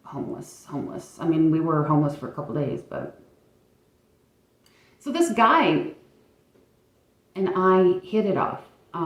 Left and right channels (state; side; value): identical; both; correlation 1.00